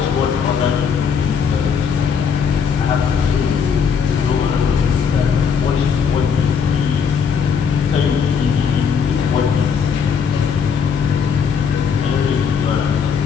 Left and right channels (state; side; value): quieter; right; 6.5 dB